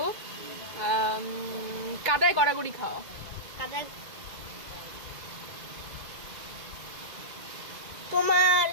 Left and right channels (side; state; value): left; late; 2.0 ms